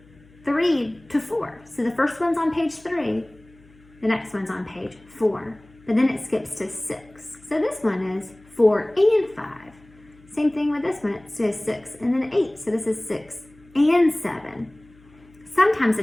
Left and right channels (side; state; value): left; noise; hum, 27 dB below the sound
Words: 3 to 4. So the first one's on page 3, the next one's on page 4, but then it skips to 6. So this one is 4 and 5. Same thing with this one, it says 6 and then 8. So this is 6 and 7. Sometimes